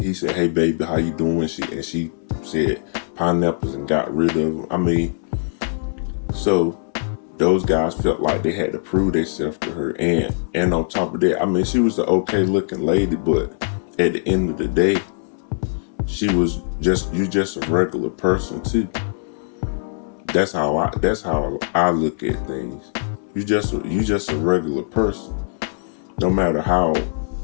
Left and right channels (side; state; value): right; silent; 65 dB below the other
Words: he said, hey baby, how you doing? She said pineapples and got rid of them. So those guys felt like they had to prove themselves to her, and on top of that, she was an okay looking lady, but at the end of the day, she was just a regular person too. That's how I look at things. You just a regular person. No matter how